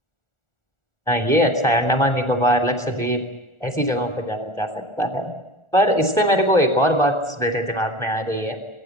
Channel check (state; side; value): late; right; 1.4 ms